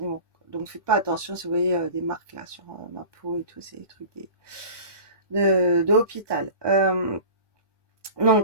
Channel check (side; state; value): left; late; 1.2 ms